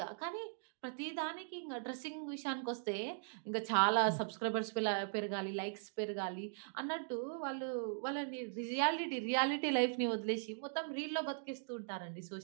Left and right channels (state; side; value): silent; left; digital silence